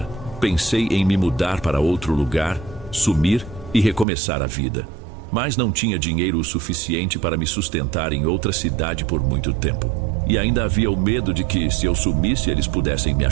Pensei em me mudar para outro lugar, sumir e recomeçar a vida. Mas não tinha dinheiro o suficiente para me sustentar em outra cidade por muito tempo. E ainda havia o medo de que, se eu sumisse, eles pudessem me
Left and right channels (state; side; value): drops out; left; at 4.0 s